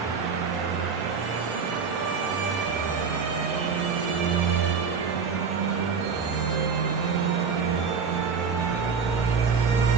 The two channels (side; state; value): left; quieter; 5.8 dB